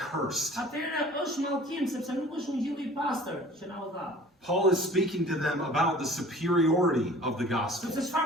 atëherë është mallkim sepse nuk është ungjilli i pastër që na u dha. Paul is speaking to them about the superiority of the gospel. Sepse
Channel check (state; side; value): normal; both; correlation 0.46